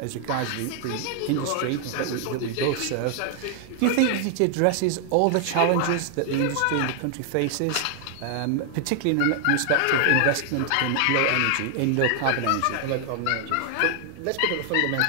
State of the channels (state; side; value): different; both; correlation 0.00